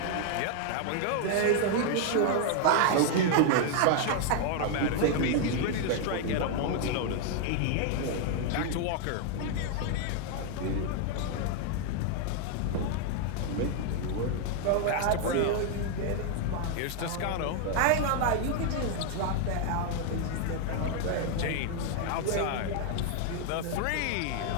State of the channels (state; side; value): different; both; correlation 0.00